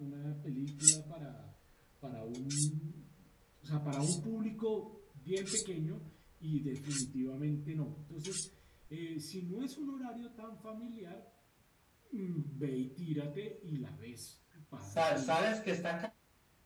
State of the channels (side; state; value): both; identical; correlation 1.00